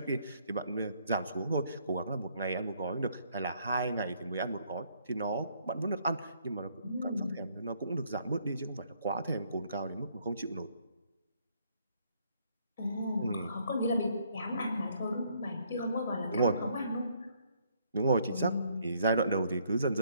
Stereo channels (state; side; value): inverted; both; correlation -0.67